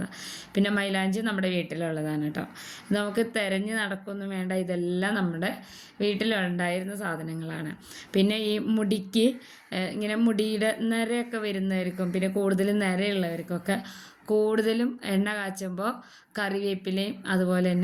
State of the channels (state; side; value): identical; both; correlation 1.00